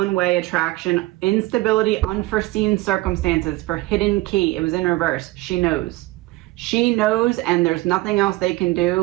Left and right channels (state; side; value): quieter; left; 19.6 dB